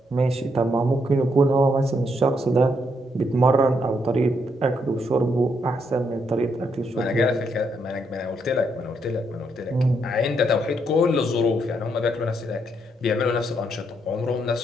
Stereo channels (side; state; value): both; normal; correlation 0.76